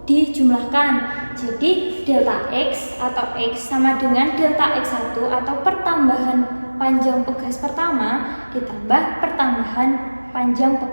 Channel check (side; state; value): both; inverted; correlation -1.00